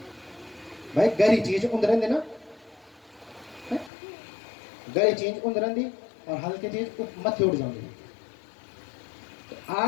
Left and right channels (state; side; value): drops out; right; at 3.9 s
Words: भाई? गरी चीज उंदरन देना, गरी चीज उंदरन दी और हल्की चीज मत उड़ जाऊंगी। तो